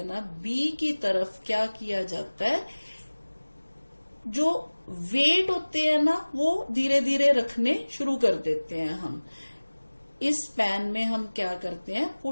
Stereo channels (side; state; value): both; inverted; correlation -1.00